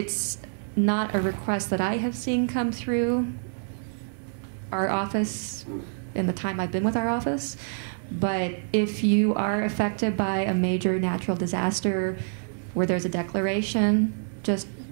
not a request that I have seen come through our office in the time I've been with our office, but if you are affected by a major natural disaster where there's a declaration, just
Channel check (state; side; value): silent; left; 60 dB below the other